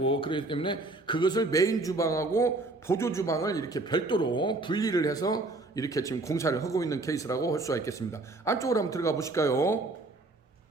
그렇기 때문에 그것을 메인 주방하고 보조 주방을 이렇게 별도로 분리를 해서 이렇게 지금 공사를 하고 있는 케이스라고 할 수가 있겠습니다. 안쪽으로 한번 들어가 보실까요?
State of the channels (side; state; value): left; quieter; 3.1 dB